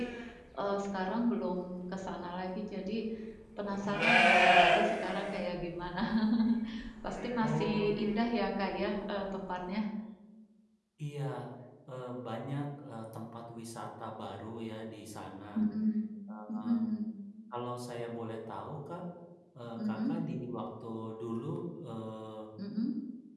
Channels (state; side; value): identical; both; correlation 1.00